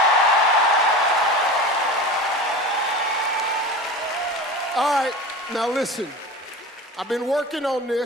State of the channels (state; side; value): normal; both; correlation 0.31